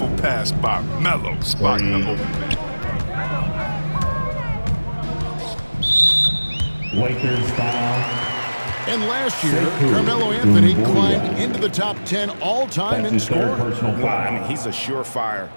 pass by Melo, spotting the open man. Lakers foul. And last year, Carmelo Anthony climbed into the top 10 all-time in scoring. Well, I mean, he's a surefire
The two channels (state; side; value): inverted; both; correlation -1.00